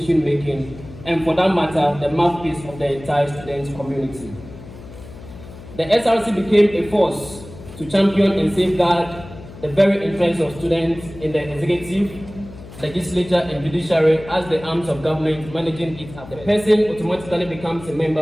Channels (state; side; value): noise; left; hum, 16 dB below the sound